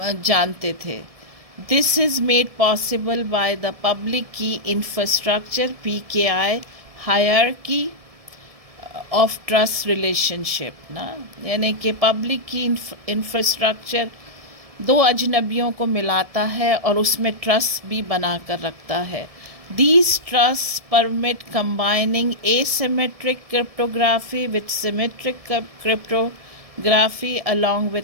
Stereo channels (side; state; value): left; late; 1.7 ms